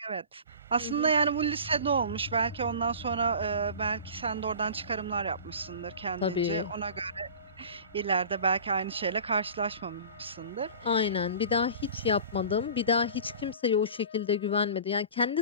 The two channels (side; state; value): both; inverted; correlation -0.39